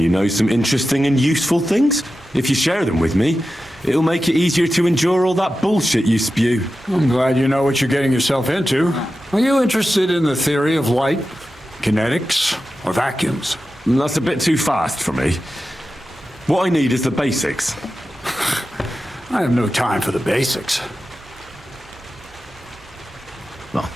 know some interesting and useful things. If you share them with me, it'll make it easier to endure all that bullshit you spew. I'm glad you know what you're getting yourself into. Are you interested in the theory of light, kinetics, or vacuums? That's a bit too fast for me. What I need is the basics. I have no time for the basics. Well,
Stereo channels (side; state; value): both; normal; correlation 0.92